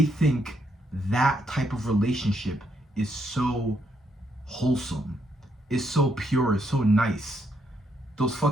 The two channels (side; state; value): both; normal; correlation 0.76